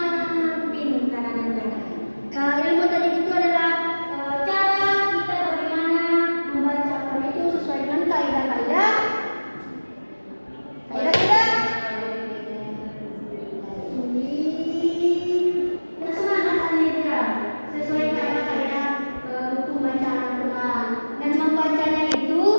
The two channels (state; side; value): inverted; both; correlation -1.00